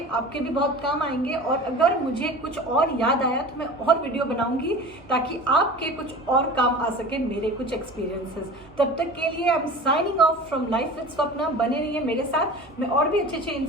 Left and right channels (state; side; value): normal; both; correlation 0.37